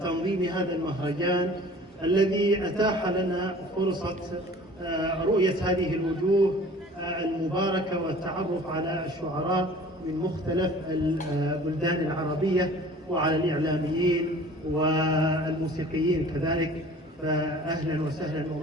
هذا المهرجان الذي أتاح لنا فرصة رؤية هذه الوجوه المباركة والتعرف على الشعراء من مختلف البلدان العربية وعلى الإعلاميين والموسيقيين كذلك. فأهلا وسهلا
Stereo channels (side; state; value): both; normal; correlation 0.47